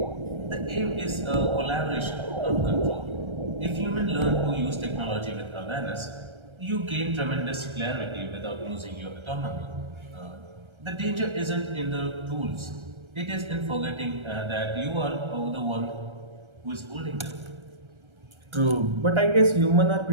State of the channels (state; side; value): late; left; 1.3 ms